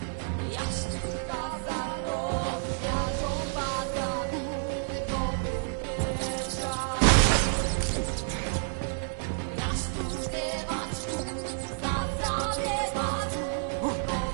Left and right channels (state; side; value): silent; left; 58 dB below the other